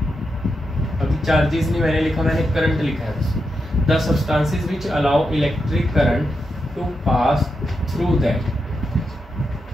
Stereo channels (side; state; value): both; normal; correlation 0.86